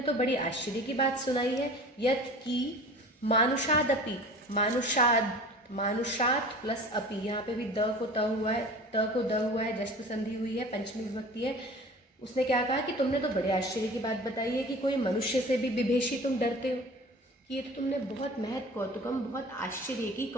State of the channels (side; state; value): both; normal; correlation 0.41